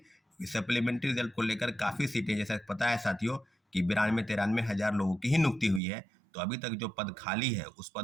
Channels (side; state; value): left; drops out; at 5.8 s